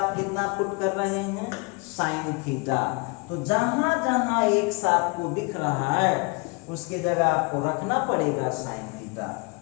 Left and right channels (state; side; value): quieter; right; 30.2 dB